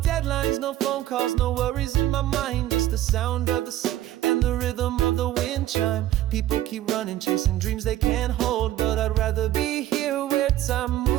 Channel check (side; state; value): left; quieter; 13.6 dB